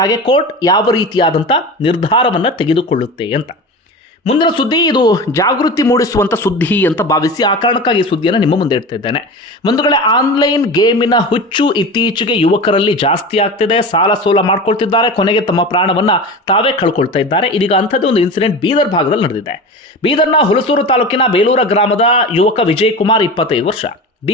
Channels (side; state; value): both; normal; correlation 0.30